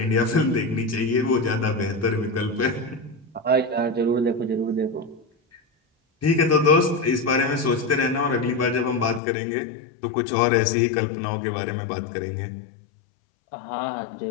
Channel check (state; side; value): drops out; right; at 9.2 s